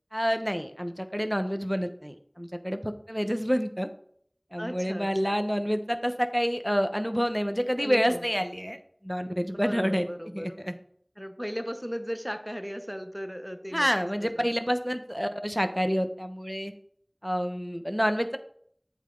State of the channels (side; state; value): both; identical; correlation 1.00